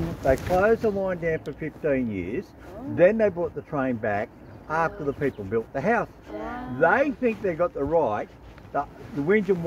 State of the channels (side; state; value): both; identical; correlation 1.00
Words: they closed the line down for 15 years. Oh. Then they brought the train back after the people built the house. Yeah. They think they got the right, the whinge and